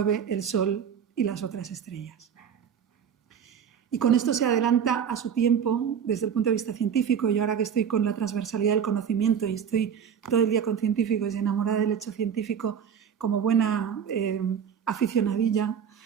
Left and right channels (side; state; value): left; quieter; 7.9 dB